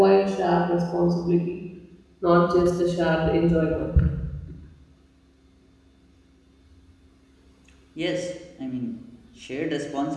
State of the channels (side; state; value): both; identical; correlation 1.00